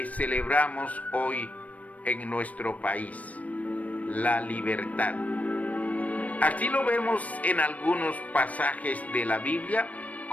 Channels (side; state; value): right; late; 0.069 ms